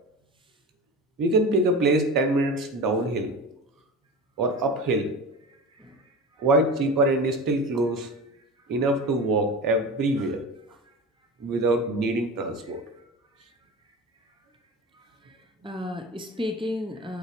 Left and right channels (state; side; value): normal; both; correlation 0.31